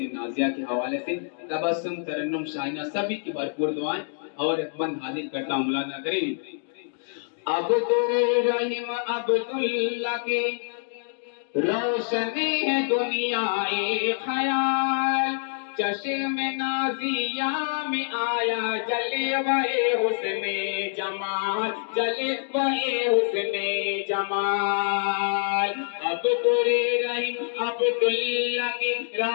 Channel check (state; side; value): silent; right; digital silence